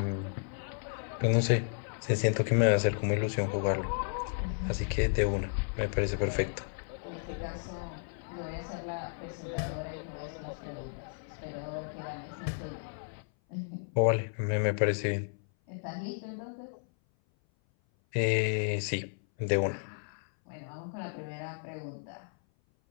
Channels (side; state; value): right; silent; 56 dB below the other